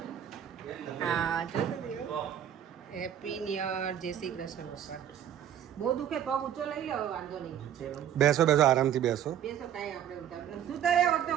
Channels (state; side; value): quieter; left; 10.0 dB